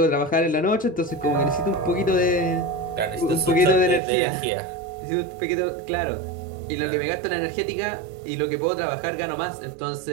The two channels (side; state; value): left; drops out; at 4.0 s